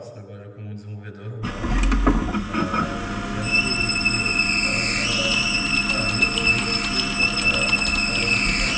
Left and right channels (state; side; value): identical; both; correlation 1.00